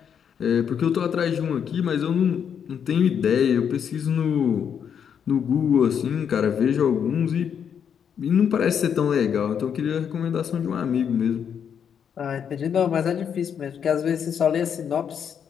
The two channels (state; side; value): quieter; right; 7.9 dB